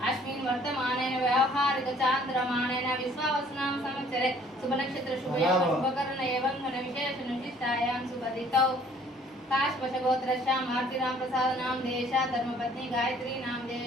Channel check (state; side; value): normal; both; correlation 0.57